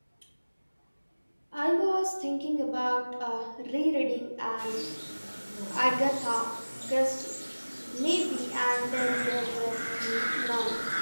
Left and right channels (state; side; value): inverted; both; correlation -1.00